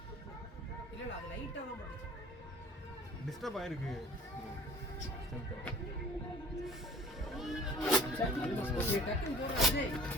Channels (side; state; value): both; normal; correlation 0.47